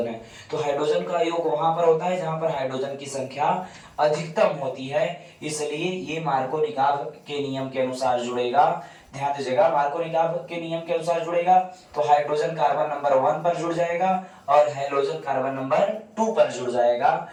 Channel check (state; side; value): identical; both; correlation 1.00